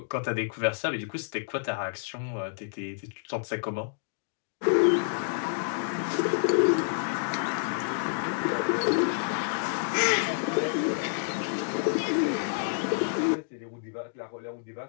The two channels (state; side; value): silent; right; digital silence